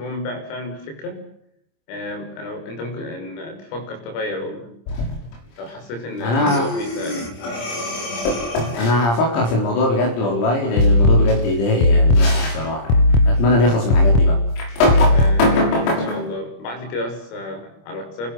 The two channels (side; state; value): right; late; 26 ms